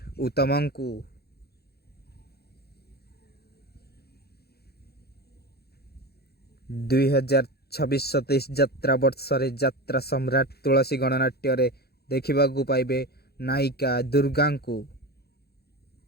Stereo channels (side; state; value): right; late; 0.46 ms